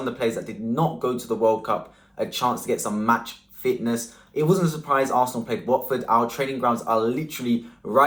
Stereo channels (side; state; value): both; identical; correlation 1.00